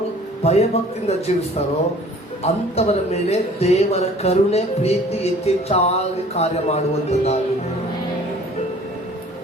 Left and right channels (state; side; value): normal; both; correlation 0.51